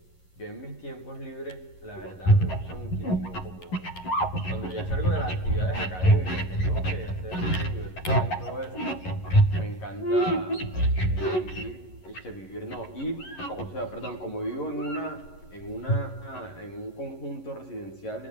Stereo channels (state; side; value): late; right; 11 ms